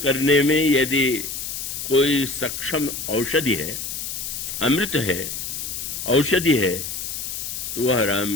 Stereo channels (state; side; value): noise; left; hiss, 5 dB below the sound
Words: करने में यदि कोई सक्षम औषधि है, अमृत है, औषधि है, तो वह